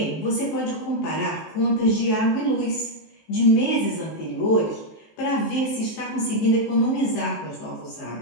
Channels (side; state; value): right; late; 19 ms